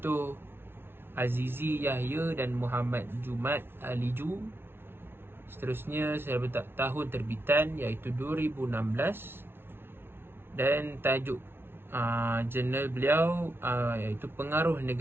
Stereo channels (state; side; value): late; left; 0.11 ms